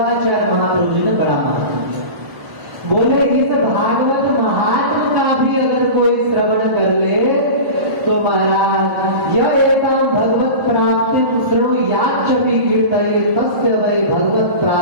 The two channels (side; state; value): left; late; 1.5 ms